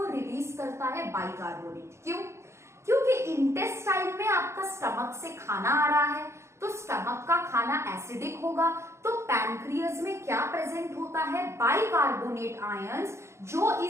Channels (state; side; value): late; left; 0.13 ms